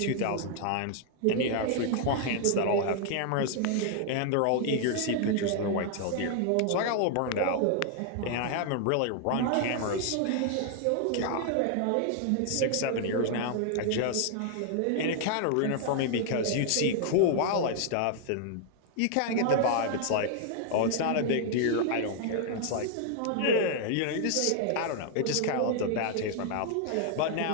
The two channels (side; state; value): both; different; correlation 0.00